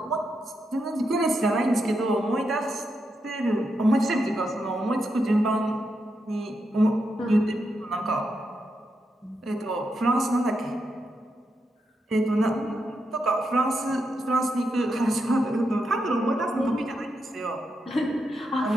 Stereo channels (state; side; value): normal; both; correlation 0.84